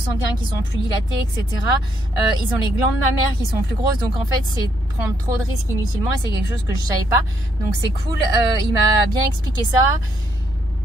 qui sont plus dilatés, etc. Ils ont les glandes mammaires qui sont plus grosses, donc en fait c'est prendre trop de risques inutilement et c'est quelque chose que je savais pas. Donc c'est cool, il m'a bien expliqué ça.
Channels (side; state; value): both; normal; correlation 0.73